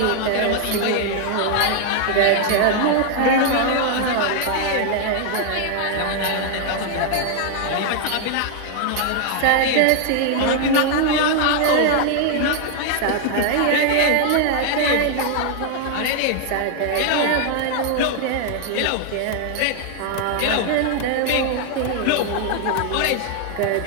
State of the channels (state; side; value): different; both; correlation 0.00